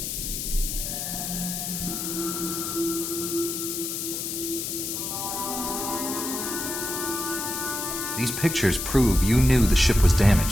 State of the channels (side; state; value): left; noise; hiss, 4 dB below the sound